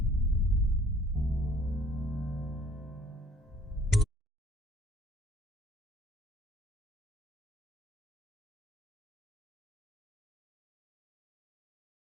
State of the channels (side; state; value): both; normal; correlation 0.57